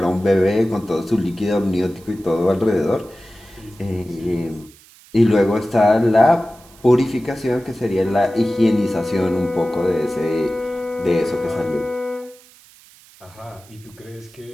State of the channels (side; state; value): right; noise; hiss, 25 dB below the sound